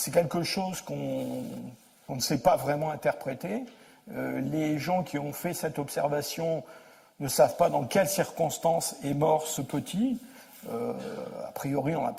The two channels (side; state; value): both; identical; correlation 1.00